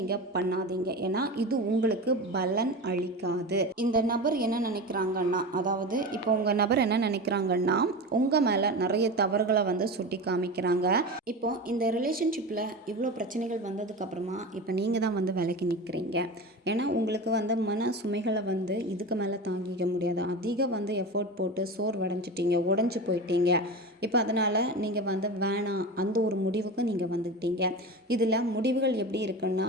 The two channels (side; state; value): both; normal; correlation 0.27